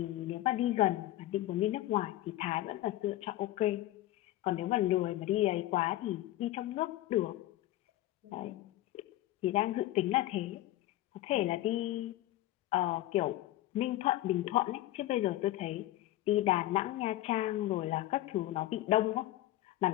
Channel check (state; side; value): quieter; right; 15.3 dB